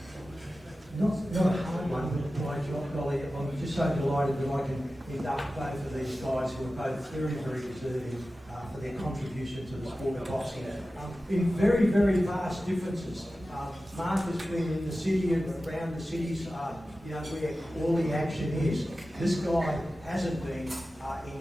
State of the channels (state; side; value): normal; both; correlation 0.94